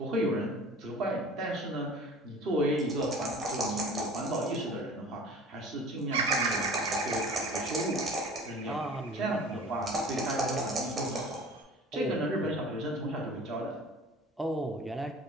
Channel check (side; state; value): both; normal; correlation 0.43